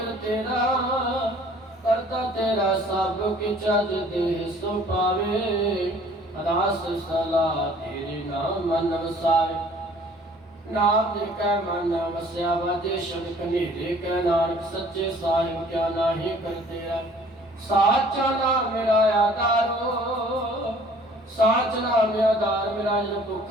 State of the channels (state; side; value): normal; both; correlation 0.54